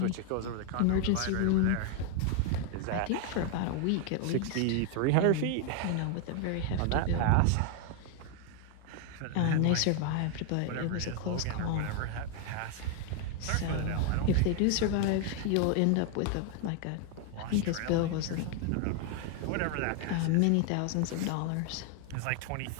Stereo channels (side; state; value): both; different; correlation 0.01